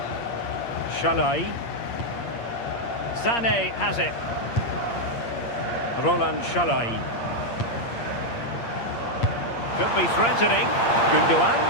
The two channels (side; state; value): right; late; 8.6 ms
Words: Shalai. Sané has it. Roland Shalai. Could be threatening. Gundogan.